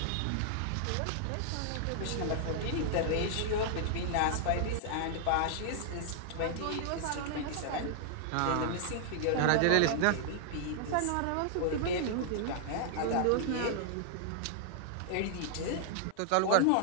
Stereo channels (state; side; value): different; both; correlation -0.01